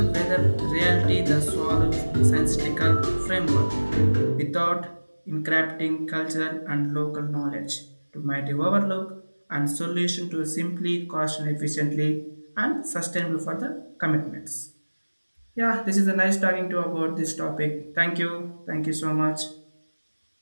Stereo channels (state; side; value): inverted; both; correlation -1.00